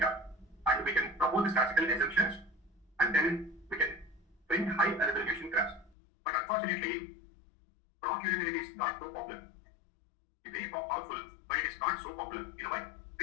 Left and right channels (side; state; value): right; drops out; at 6.0 s